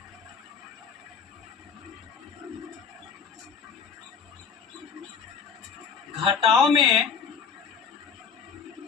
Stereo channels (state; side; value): quieter; right; 6.2 dB